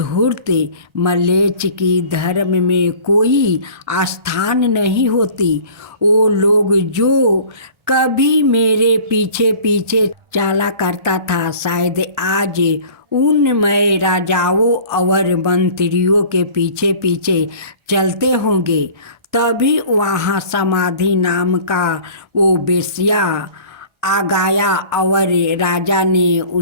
मलेच्छ की धर्म में कोई आस्थान नहीं होती। वो लोग जो कभी मेरे पीछे पीछे चला करता था, शायद आज उन मैं राजाओं और मंत्रियों के पीछे पीछे चलते होंगे। तभी वहाँ समाधि नाम का वो वेश्या आ गया और राजा ने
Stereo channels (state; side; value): late; left; 1.3 ms